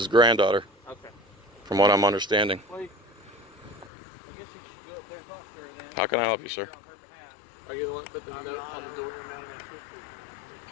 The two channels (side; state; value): right; drops out; at 3.9 s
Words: granddaughter, Okay. from what I'm understanding. Well, I guess you should go up there and talk to her then. How can I help you, sir? Are you the one that put the note on the door?